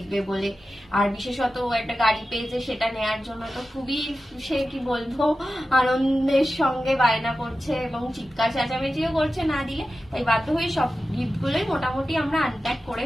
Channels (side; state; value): both; normal; correlation 0.93